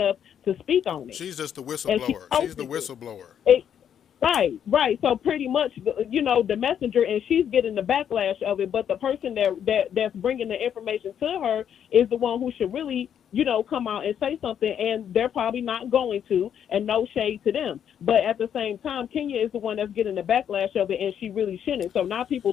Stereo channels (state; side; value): quieter; right; 8.9 dB